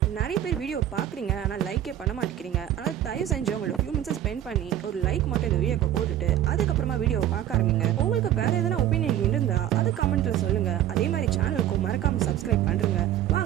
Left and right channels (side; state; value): left; quieter; 11.8 dB